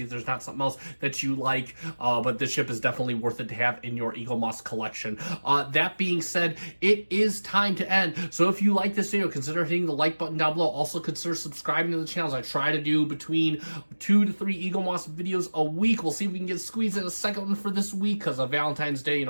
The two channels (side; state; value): both; inverted; correlation -1.00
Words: if there's not something else that you like. But this ship is definitely worth it to have in your Eaglemoss collection. That being said, it is time to end. So if you like this video, consider hitting the like button down below. Also consider subscribing to the channels. I try to do between 2 to 3 Eaglemoss videos a week. We'll see if we can get squeezed in a second one for this week, because of Valentine's Day,